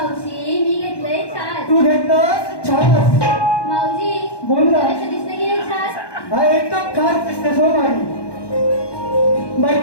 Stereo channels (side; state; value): right; late; 1.2 ms